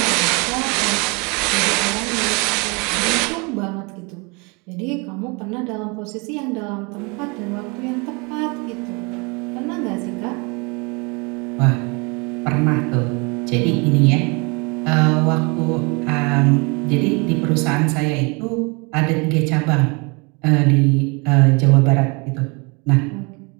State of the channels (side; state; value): left; quieter; 30.0 dB